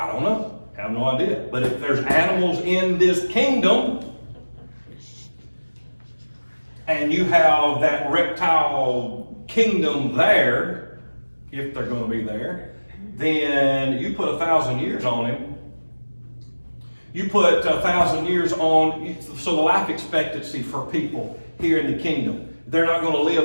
don't know. I have no idea. But if there's animals in this kingdom, and you have that reptile kingdom there, if they're going to be there, then you put 1,000 years on him. You put 1,000 years on, so the life expectancy for people here in the kingdom, they're not going to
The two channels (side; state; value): both; inverted; correlation -1.00